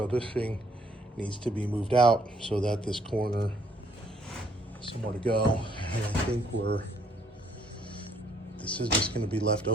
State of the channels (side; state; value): both; normal; correlation 0.66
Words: this thing needs to be moved out so that this corner has somewhere to go. And I think this is just going to be left